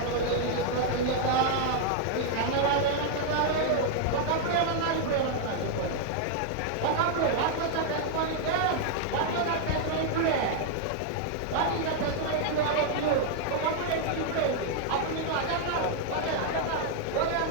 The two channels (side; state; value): both; different; correlation 0.00